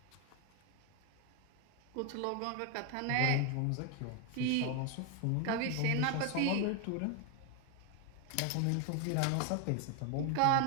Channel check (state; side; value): different; both; correlation 0.01